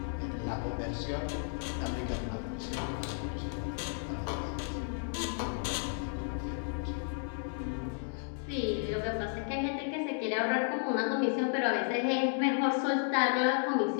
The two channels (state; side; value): silent; right; 56 dB below the other